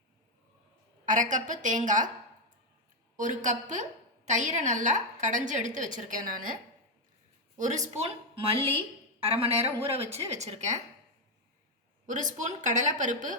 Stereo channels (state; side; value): normal; both; correlation 0.03